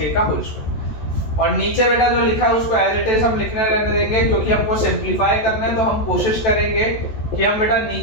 का whole square. और नीचे बेटा जो लिखा है उसको as it is हम लिखने रहने देंगे, क्योंकि हमको सिंप्लीफाई करना है, तो हम कोशिश करेंगे कि हम बेटा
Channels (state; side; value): late; right; 14 ms